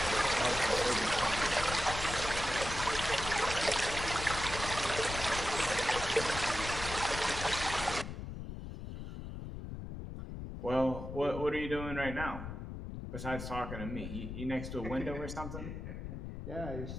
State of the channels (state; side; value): noise; left; rumble, 7 dB below the sound